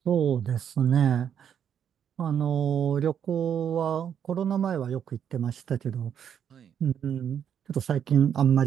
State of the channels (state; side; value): quieter; left; 8.6 dB